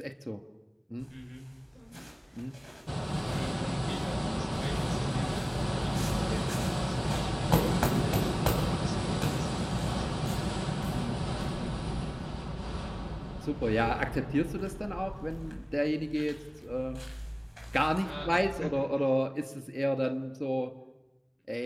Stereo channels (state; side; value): identical; both; correlation 1.00